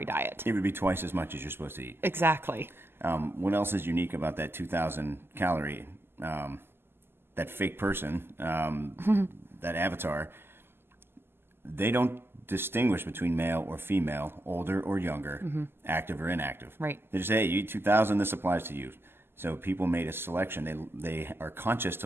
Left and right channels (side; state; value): left; late; 0.11 ms